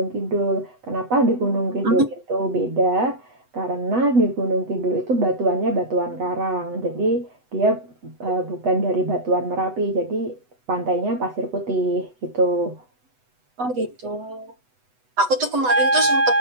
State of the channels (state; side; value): late; left; 8.0 ms